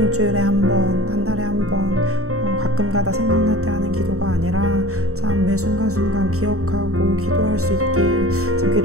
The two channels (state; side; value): late; left; 0.64 ms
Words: 한 번, 한 달에 한 번, 가끔가다 생각날 때 하는 기도가 아니라 참 매 순간순간 기억하고 기도할 수 있길, 참